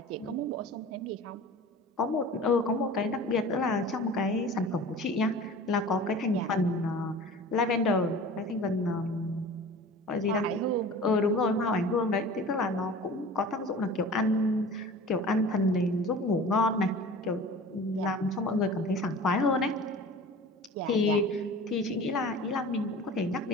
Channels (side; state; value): both; normal; correlation 0.40